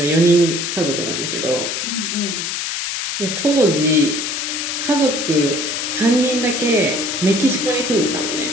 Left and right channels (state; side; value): noise; left; hiss, 3 dB below the sound